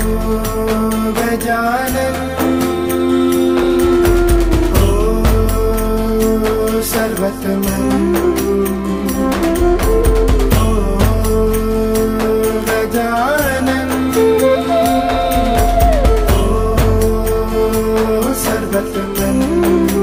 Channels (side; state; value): both; identical; correlation 1.00